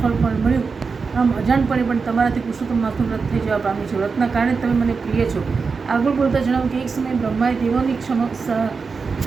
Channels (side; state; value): left; quieter; 4.9 dB